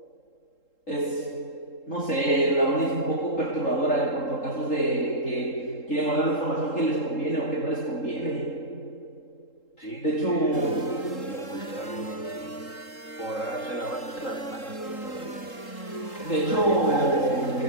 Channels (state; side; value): late; right; 3.8 ms